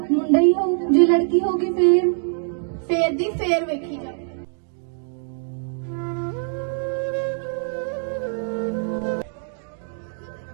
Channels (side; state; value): left; silent; digital silence